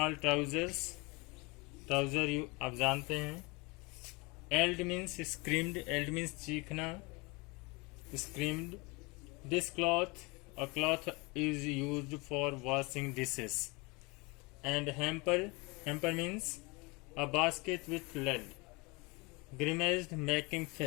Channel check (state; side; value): quieter; right; 27.1 dB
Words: trousers, trouser you आप जानते हैं. Eld means screamed, eld means चीखना, screamed. This cloth, a cloth is used for washing dishes. And hamper means a basket with lid. Grimaced, making